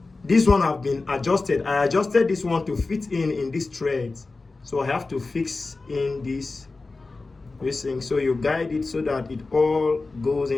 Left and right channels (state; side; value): quieter; right; 3.6 dB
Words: this one have been adjusted. I adjusted this one to fit in this thread. So I have to fix in this. So you guide it so that it all goes